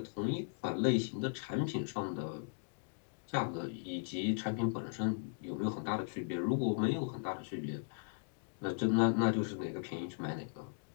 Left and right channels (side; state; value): right; silent; digital silence